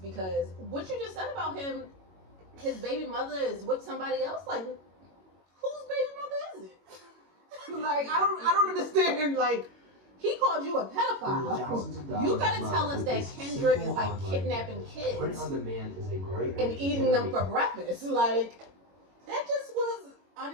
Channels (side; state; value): left; late; 21 ms